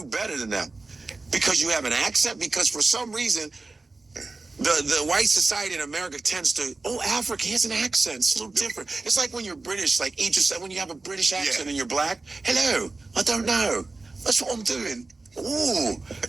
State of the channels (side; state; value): left; quieter; 3.5 dB